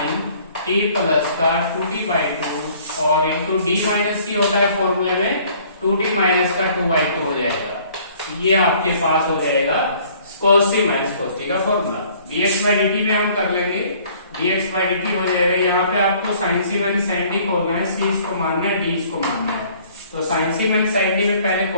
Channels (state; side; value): inverted; both; correlation -0.56